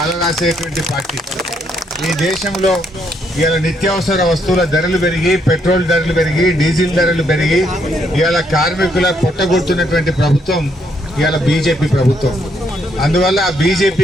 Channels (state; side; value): normal; both; correlation 0.73